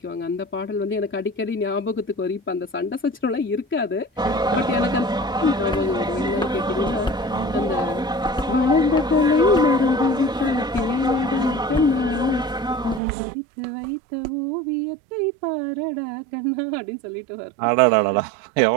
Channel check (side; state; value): left; drops out; at 13.0 s